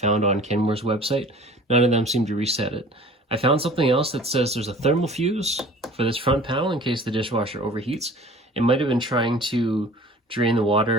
on Kenmore's website. None of them seem to reset it. I found something else that says there's a thermal fuse for this front panel in case the dishwasher overheats. It might have been trying to drain the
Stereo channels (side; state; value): both; normal; correlation 0.46